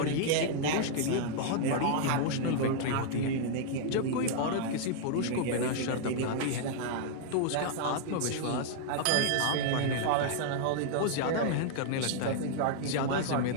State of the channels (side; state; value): both; different; correlation -0.01